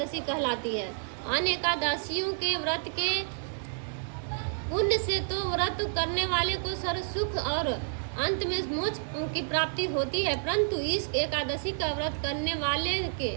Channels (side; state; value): left; silent; digital silence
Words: कहलाती है। अन्य एकादशियों के व्रत के पुण्य से तो व्रत करने वाले को सर्व सुख और अंत में मोक्ष की प्राप्ति होती है, परंतु इस एकादशी का व्रत करने वाले के